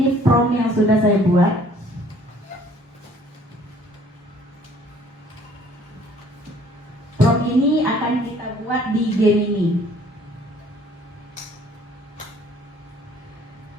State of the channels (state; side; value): normal; both; correlation 0.57